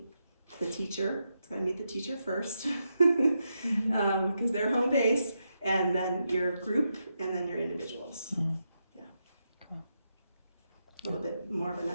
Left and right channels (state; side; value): inverted; both; correlation -0.85